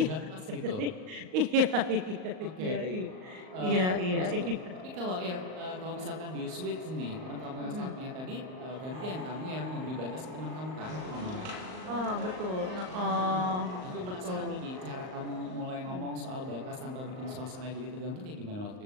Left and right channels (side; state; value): left; late; 38 ms